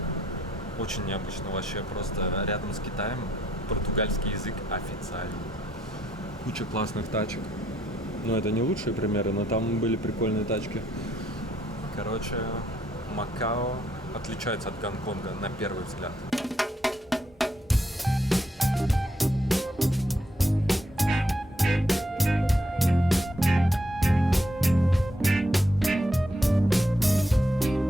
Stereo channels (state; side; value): normal; both; correlation 0.75